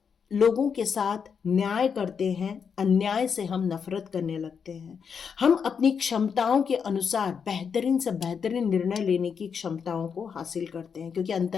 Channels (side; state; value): right; quieter; 6.5 dB